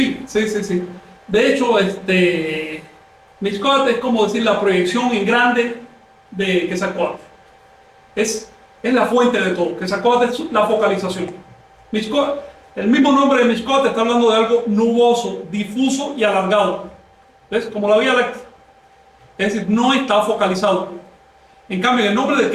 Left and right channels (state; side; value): identical; both; correlation 1.00